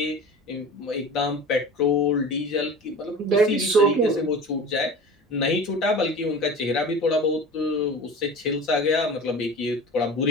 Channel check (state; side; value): normal; both; correlation 0.36